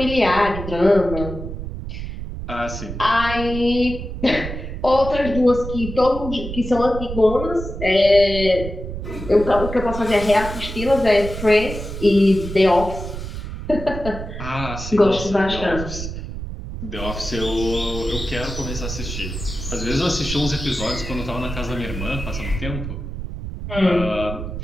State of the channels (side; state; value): right; noise; rumble, 8 dB below the sound